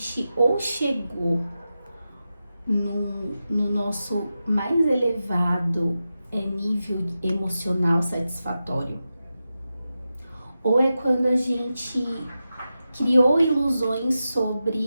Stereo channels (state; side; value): inverted; both; correlation -0.91